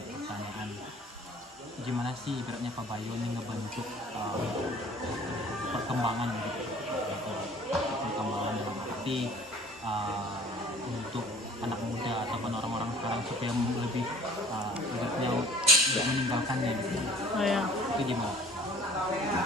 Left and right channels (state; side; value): normal; both; correlation 0.50